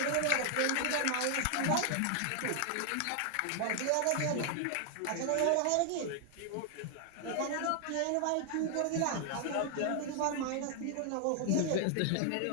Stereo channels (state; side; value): different; both; correlation 0.00